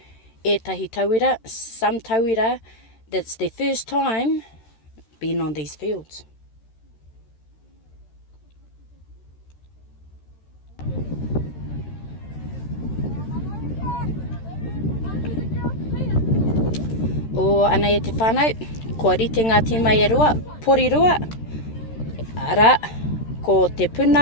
ētahi tauira, some tauira, that's their first time being on these fields. O ana e te whānau, kua rite ngā tīma e rua, Porirua, ara, ko te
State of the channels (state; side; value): late; right; 13 ms